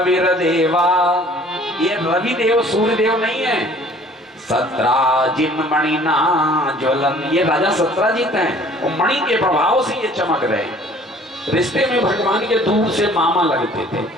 देवा, ये रवि देव सूर्यदेव नहीं है, सत्राजिन मणिना ज्वलन, ये राजा सत्राजित हैं और मणि के प्रभाव से ये चमक रहे हैं। रिश्ते में भगवान के दूर से मामा लगते थे,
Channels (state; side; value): normal; both; correlation 0.53